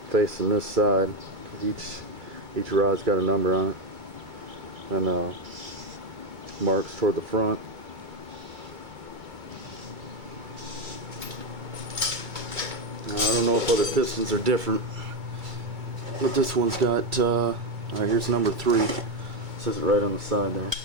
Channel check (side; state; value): left; late; 2.3 ms